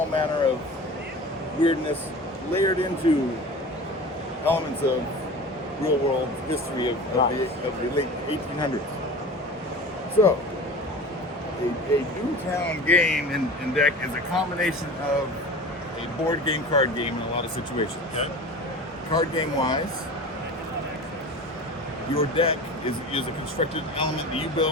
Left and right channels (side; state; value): both; normal; correlation 0.35